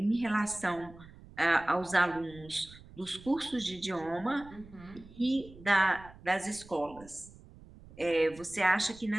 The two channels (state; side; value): noise; right; rumble, 20 dB below the sound